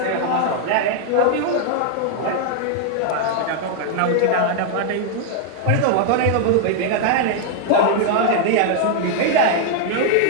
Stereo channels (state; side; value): different; both; correlation 0.00